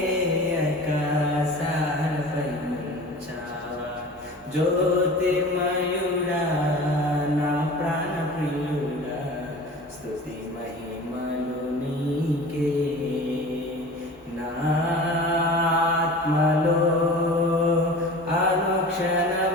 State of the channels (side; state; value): both; normal; correlation 0.38